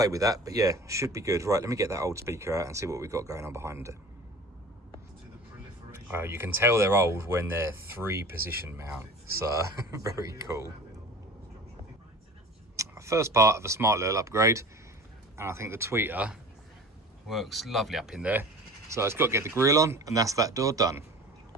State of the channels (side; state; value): both; normal; correlation 0.40